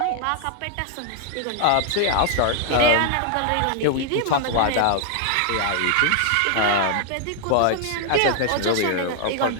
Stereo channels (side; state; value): both; different; correlation 0.00